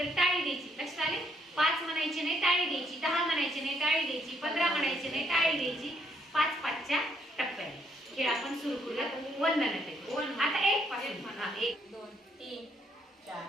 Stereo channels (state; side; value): normal; both; correlation 0.71